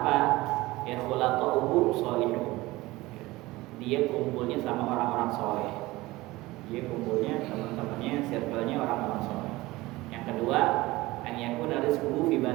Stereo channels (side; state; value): left; quieter; 19.7 dB